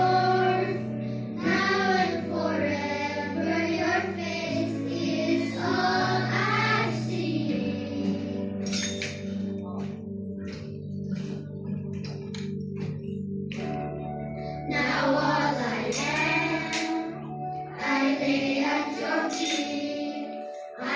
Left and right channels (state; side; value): identical; both; correlation 1.00